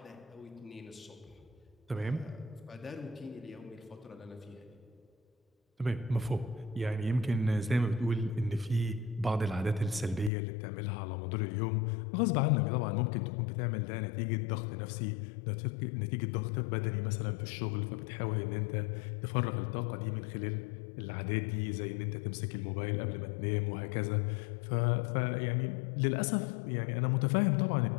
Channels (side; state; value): right; drops out; at 10.3 s